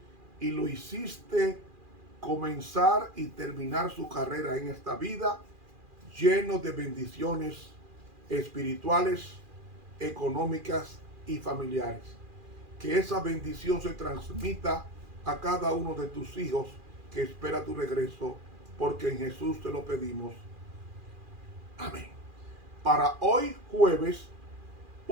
y lo hiciste comenzar y terminar su carrera en esta vida lleno de bendiciones espirituales, económicas y familiares. Que esa bendición se transmita a cada uno de tus hijos que espera tu regreso, porque en Jesús te lo pedimos. Amén. Para hoy jueves,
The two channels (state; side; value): late; left; 2.4 ms